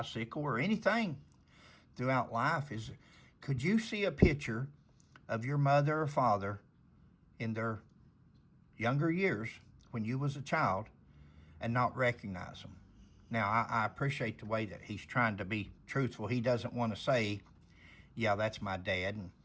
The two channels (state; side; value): identical; both; correlation 1.00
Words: or anything throughout life? Could you see a picture of your mother or father in their younger years when you was a child and not recognize them? Now, I appreciate the way that he's trying to be truthful. He doesn't want to say, yeah, that's my dad.